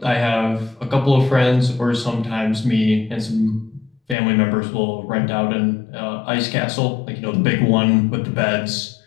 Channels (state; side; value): drops out; right; at 4.2 s